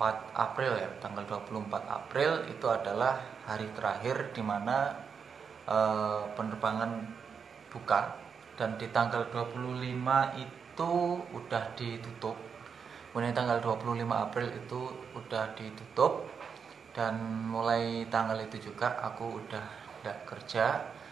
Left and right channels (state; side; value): quieter; left; 6.4 dB